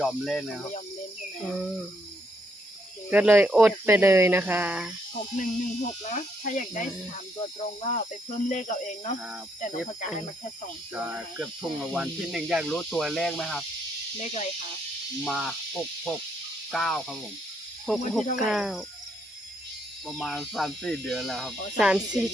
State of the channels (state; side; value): normal; both; correlation 0.74